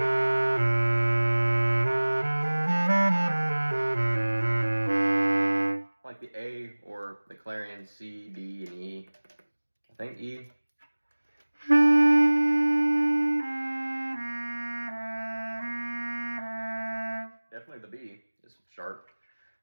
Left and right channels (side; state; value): both; inverted; correlation -1.00